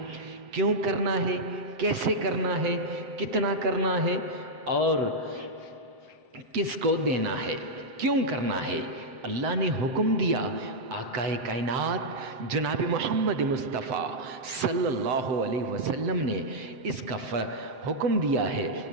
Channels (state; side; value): late; left; 7.7 ms